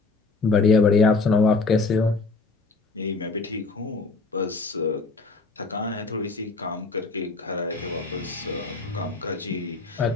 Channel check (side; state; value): right; quieter; 3.8 dB